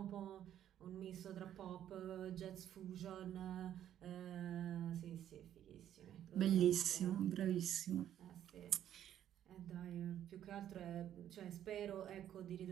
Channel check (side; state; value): left; quieter; 10.9 dB